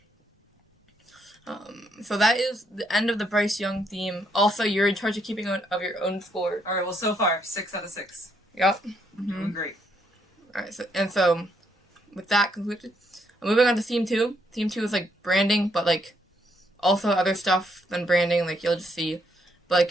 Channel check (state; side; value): normal; both; correlation 0.73